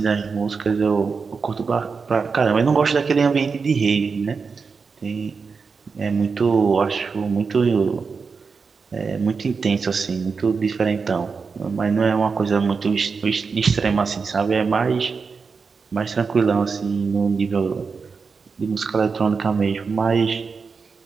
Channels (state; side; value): quieter; left; 5.1 dB